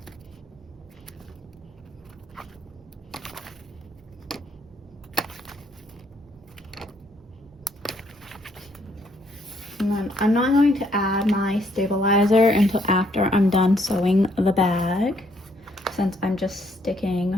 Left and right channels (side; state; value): right; noise; hum, 28 dB below the sound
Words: And then I'm not going to add my stabilizer until after I'm done sewing the bag, since I'm just sticking